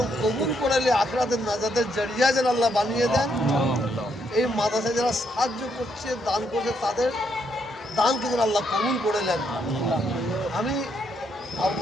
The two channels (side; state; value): both; normal; correlation 0.75